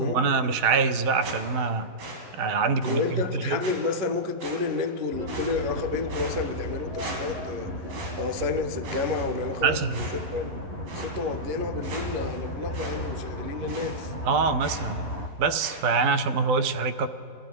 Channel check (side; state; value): left; late; 12 ms